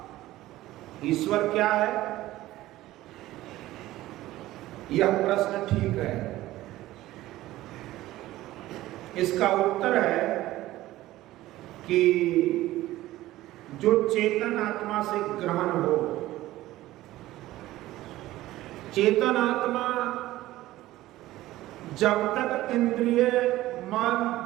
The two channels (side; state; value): left; quieter; 16.1 dB